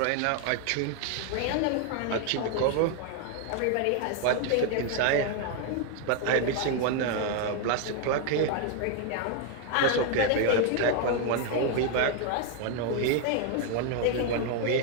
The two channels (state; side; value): different; both; correlation 0.00